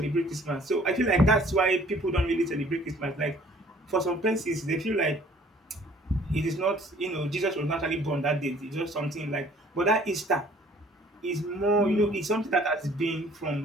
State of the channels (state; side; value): normal; both; correlation 0.56